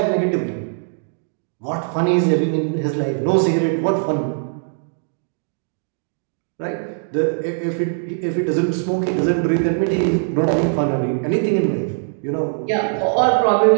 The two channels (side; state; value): left; silent; digital silence